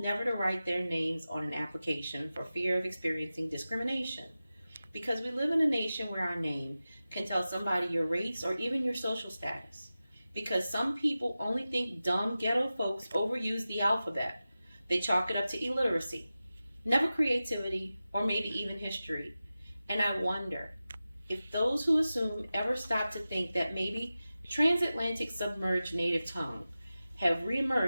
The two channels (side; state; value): both; inverted; correlation -0.95